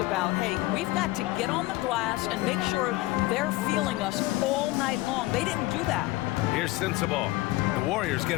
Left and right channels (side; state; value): right; quieter; 19.0 dB